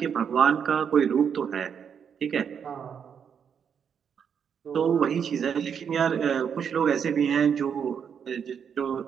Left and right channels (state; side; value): quieter; left; 7.4 dB